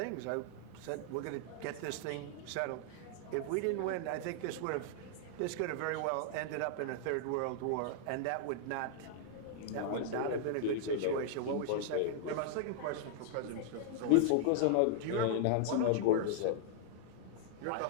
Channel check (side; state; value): both; different; correlation -0.01